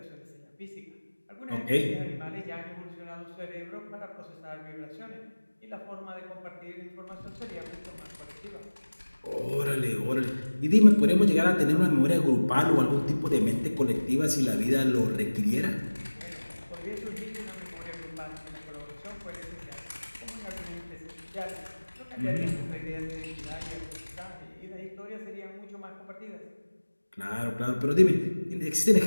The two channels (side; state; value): both; inverted; correlation -1.00